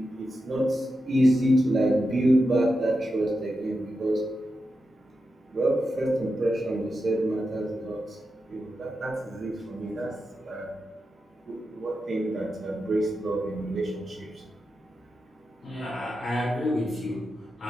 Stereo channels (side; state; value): both; normal; correlation 0.89